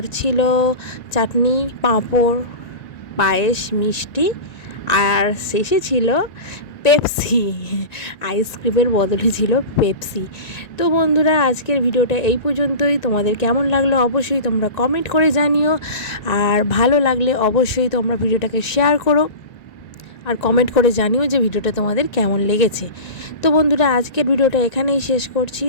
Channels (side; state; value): right; late; 1.9 ms